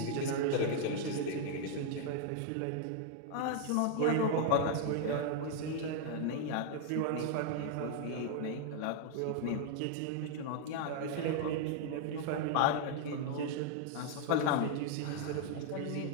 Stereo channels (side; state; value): both; different; correlation 0.00